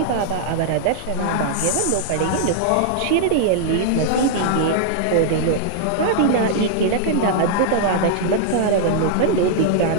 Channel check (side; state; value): both; different; correlation -0.01